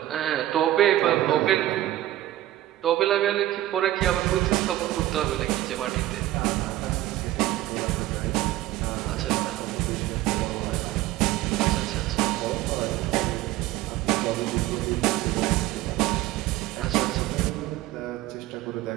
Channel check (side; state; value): left; quieter; 14.9 dB